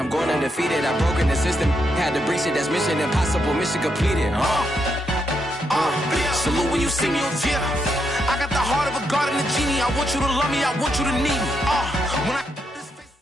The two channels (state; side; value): normal; both; correlation 0.80